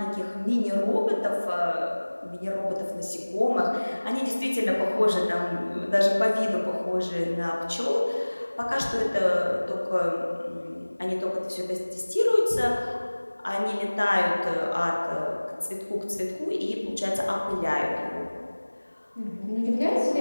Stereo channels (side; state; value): both; inverted; correlation -1.00